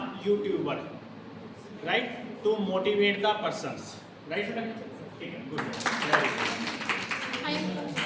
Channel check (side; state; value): both; identical; correlation 1.00